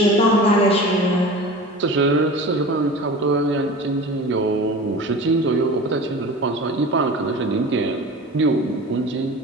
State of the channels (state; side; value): normal; both; correlation 0.36